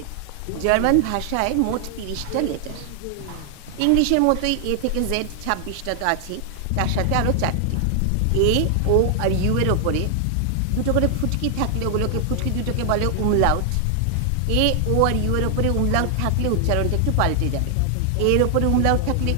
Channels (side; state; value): both; different; correlation 0.00